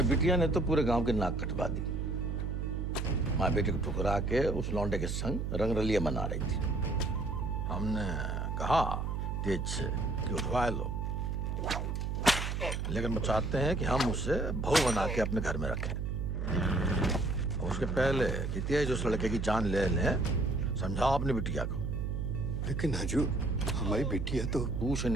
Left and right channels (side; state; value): right; noise; hum, 2 dB below the sound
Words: बिटिया ने तो पूरे गांव के नाक कटवा दी। माँ बेटे को ठुकरा के उस लौंडे के संग रंगरलिया मना रही थी। हमने कहा तेज से कि उठवा लो, लेकिन वो चाहते हैं कि हम उसे बहू बना के अपने घर में रखें। और उसके पहले कि तेज उस लड़के की जान ले लें, समझाओ अपनी बिटिया को। लेकिन हजूर, हमारी बिटिया तो पूछ